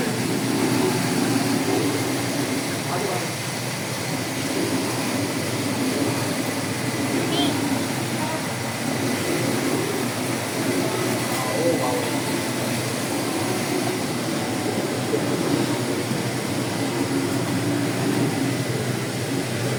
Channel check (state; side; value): identical; both; correlation 1.00